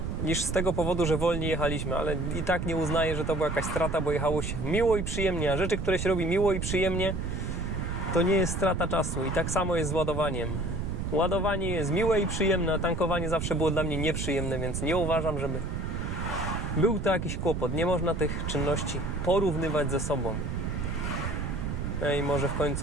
niż z tego powodu, że wolniej jechaliśmy, ale i tak nie uznaję, że to była jakaś strata, bo jechało się miło i przyjemnie, a rzeczy, które się robi miło i przyjemnie, to nie jest strata czasu. I tak samo jest z ładowaniem. Ładowanie jest miłe i przyjemne, a tankowanie zawsze było dla mnie nieprzyjemne, więc nie uważam, żeby był to jakiś kłopot. Nie można tych czynności porównywać ze sobą. No i może w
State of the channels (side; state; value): right; noise; rumble, 3 dB below the sound